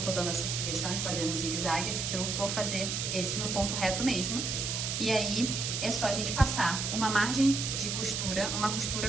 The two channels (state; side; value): noise; right; hiss, 2 dB below the sound